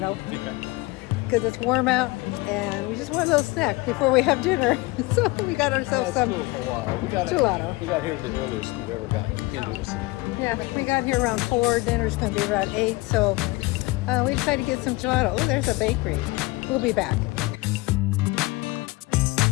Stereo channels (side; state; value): right; quieter; 22.7 dB